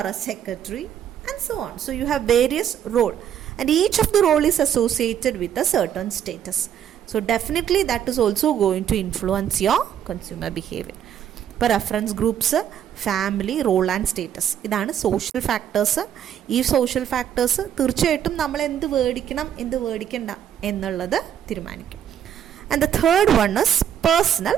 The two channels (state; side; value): quieter; left; 9.6 dB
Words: a secretary, and so on. So you have various roles, and each of the role is associated with a certain status. So definitely that is also going to influence your consumer behavior. ഇപ്പോൾ reference groups, family, role and status, ഇതാണ് social factors. ഈ social factors തീർച്ചയായിട്ടും നമ്മൾ എന്ത് മേടിക്കണം എന്ത് മേടിക്കണ്ട എന്നുള്ളത് തീരുമാനിക്കും. And the third one is personal